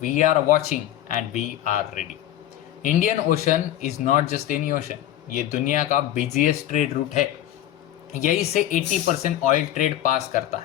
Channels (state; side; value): quieter; right; 12.5 dB